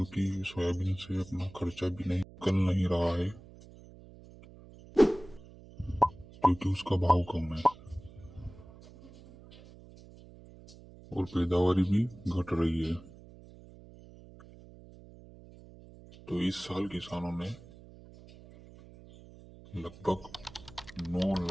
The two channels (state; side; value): noise; right; hum, 20 dB below the sound